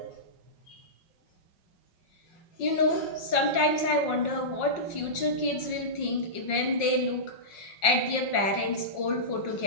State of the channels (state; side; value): late; right; 5.5 ms